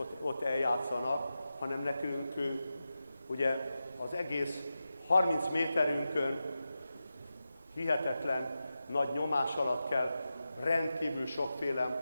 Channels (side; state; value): both; inverted; correlation -0.92